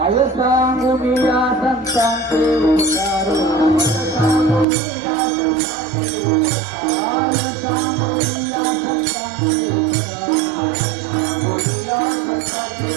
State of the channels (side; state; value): left; drops out; at 4.7 s